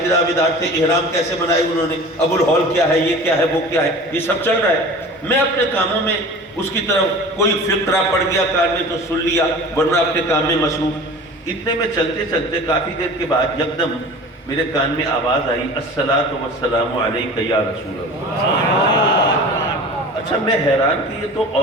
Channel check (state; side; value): normal; both; correlation 0.39